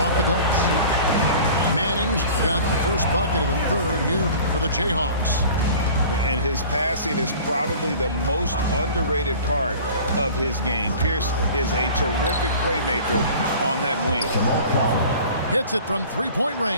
the glass. Manning's got the first bucket of the third here for the Jayhawks. And his passing is probably the most underrated part of his game. Pierce is a terrific playmaker on that wing. Hits it from three-point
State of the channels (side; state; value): both; inverted; correlation -0.43